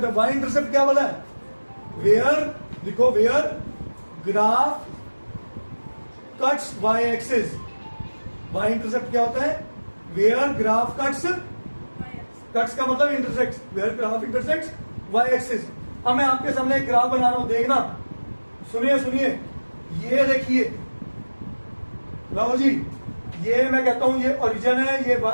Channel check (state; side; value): inverted; both; correlation -1.00